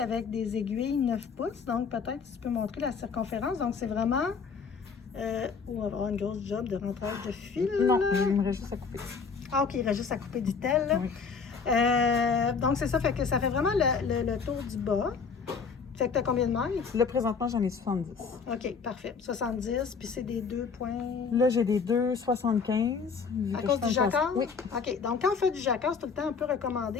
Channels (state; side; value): quieter; right; 5.5 dB